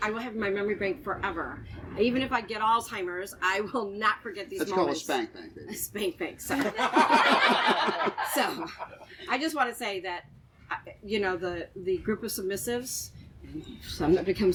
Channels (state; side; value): identical; both; correlation 1.00